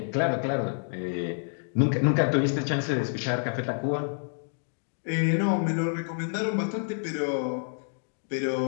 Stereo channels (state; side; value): silent; right; digital silence